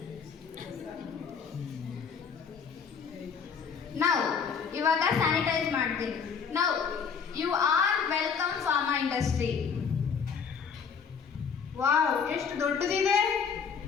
ನಾವು ಇವಾಗ ಸ್ಯಾನಿಟೈಸ್ ಮಾಡ್ತೀನಿ. ನಾವು you are welcome pharma industry. Wow, ಎಷ್ಟು ದೊಡ್ಡದಿದೆ!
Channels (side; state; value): right; quieter; 6.4 dB